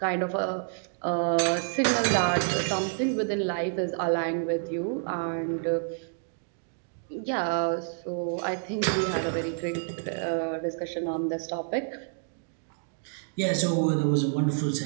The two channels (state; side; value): silent; left; digital silence